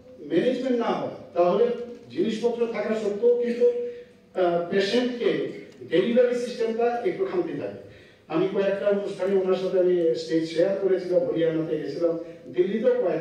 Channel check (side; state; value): both; identical; correlation 1.00